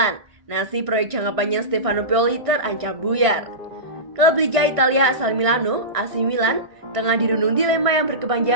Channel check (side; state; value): left; late; 1.6 ms